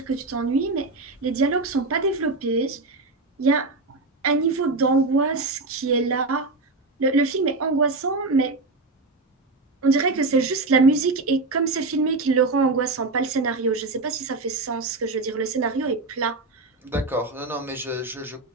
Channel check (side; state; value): left; quieter; 3.4 dB